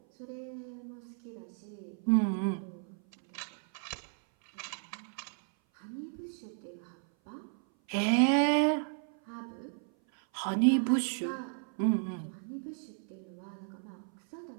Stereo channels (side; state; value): left; silent; 55 dB below the other